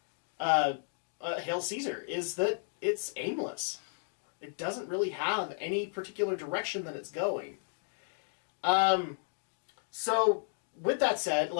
Hail Caesar, is that it's aimless. It doesn't really have any particular direction that it's going. So, with that said,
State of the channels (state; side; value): silent; right; digital silence